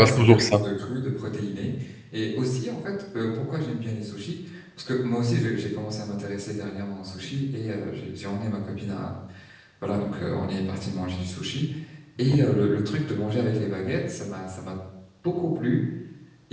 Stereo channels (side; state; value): both; identical; correlation 1.00